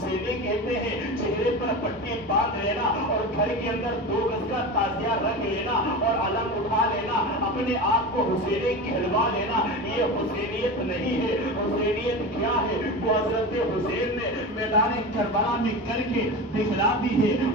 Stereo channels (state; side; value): normal; both; correlation 0.26